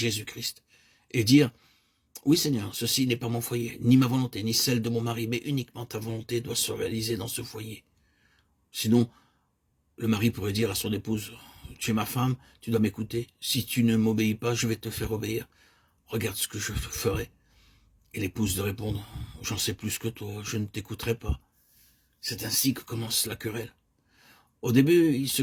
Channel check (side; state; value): both; identical; correlation 1.00